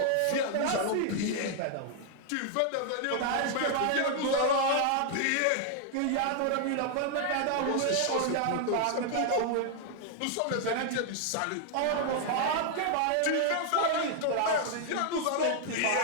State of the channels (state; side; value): different; both; correlation 0.00